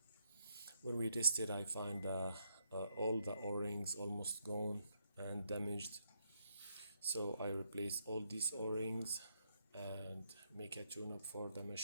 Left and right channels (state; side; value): inverted; both; correlation -0.77